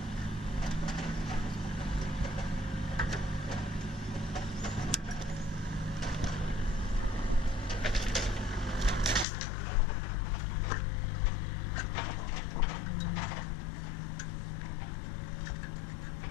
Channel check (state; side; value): drops out; right; at 9.2 s